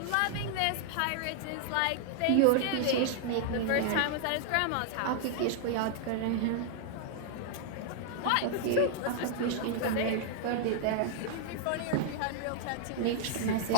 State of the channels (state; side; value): different; both; correlation 0.00